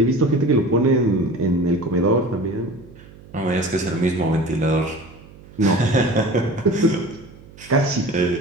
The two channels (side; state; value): right; noise; hum, 21 dB below the sound